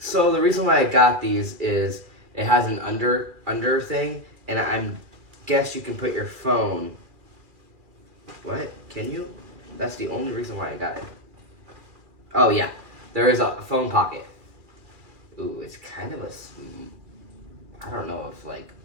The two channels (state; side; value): late; left; 2.4 ms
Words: reason why I got these is it has an under thing, and I guess you can put your phone. What? Can you? That's the only reason why I got it. Oh yeah, there is a phone pocket. Ooh, it's kind of I don't know if